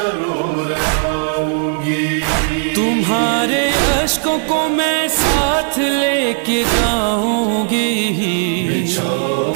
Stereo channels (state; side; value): silent; left; digital silence